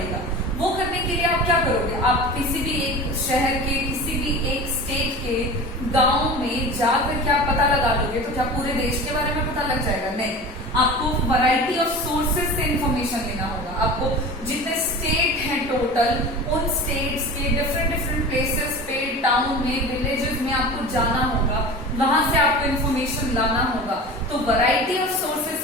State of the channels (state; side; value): normal; both; correlation 0.34